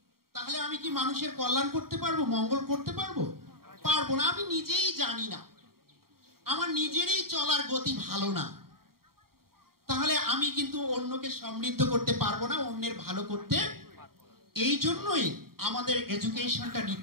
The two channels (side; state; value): left; late; 0.93 ms